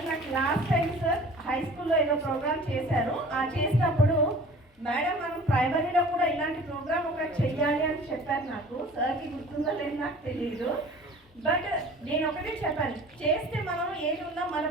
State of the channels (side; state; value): both; normal; correlation 0.45